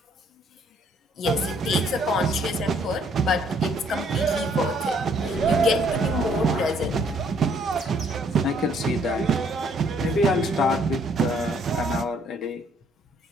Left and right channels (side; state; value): both; normal; correlation 0.65